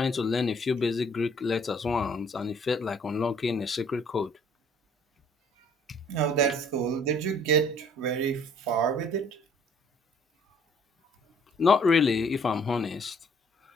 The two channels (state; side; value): normal; both; correlation 0.59